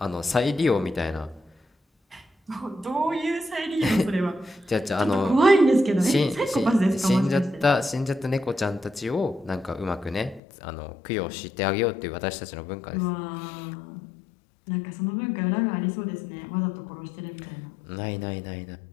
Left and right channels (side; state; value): right; drops out; at 10.4 s